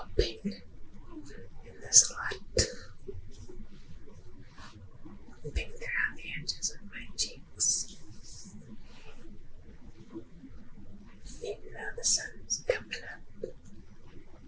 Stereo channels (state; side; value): identical; both; correlation 1.00